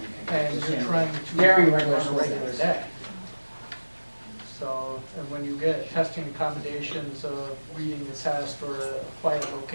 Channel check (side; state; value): both; inverted; correlation -1.00